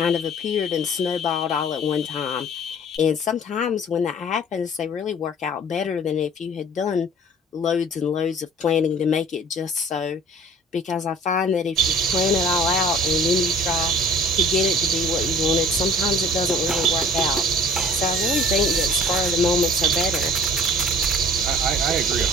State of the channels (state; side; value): normal; both; correlation 0.48